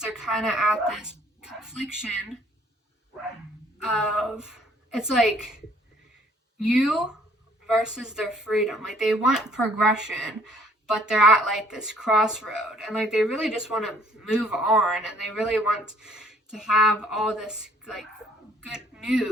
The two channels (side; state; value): both; normal; correlation 0.61